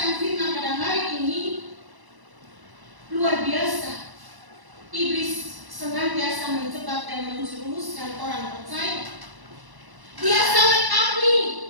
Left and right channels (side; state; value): left; late; 1.0 ms